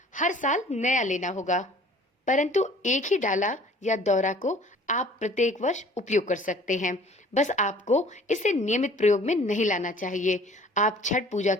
हर साल नया लेना होगा, परंतु एक ही डाला या दौरा को आप प्रत्येक वर्ष उपयोग कर सकते हैं। बस आपको इसे नियमित प्रयोग में नहीं लाना चाहिए। आप छठ पूजा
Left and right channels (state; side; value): normal; both; correlation 0.51